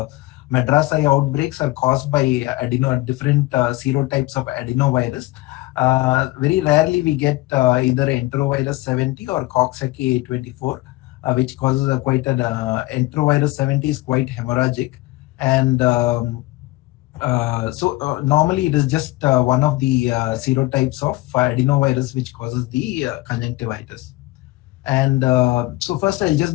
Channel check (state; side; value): quieter; right; 19.9 dB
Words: Madras eye outbreaks are caused by different serotypes of adenovirus. Very rarely we get either enterovirus 70 or Coxsackie A24, which causes enterovirus 70 is quite hemorrhagic. And normally it is just one of the serotypes of adenovirus which causes the conjunctivitis. And so first I'll